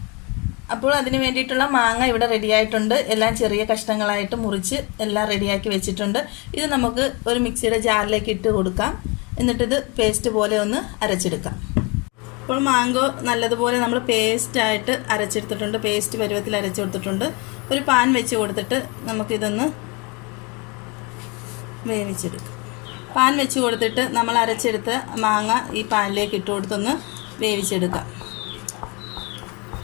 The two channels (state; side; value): quieter; right; 28.1 dB